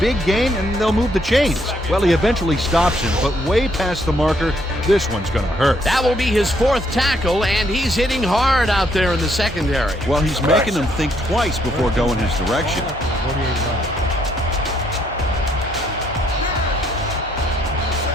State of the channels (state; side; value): normal; both; correlation 0.71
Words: gain, and they'll move the chains. Well, he eventually stops him, but way past the marker. This one's going to hurt. That will be his 4th tackle, and he's hitting hard out there in the secondary. Well, he's making them think twice before going his direction. 48 yards.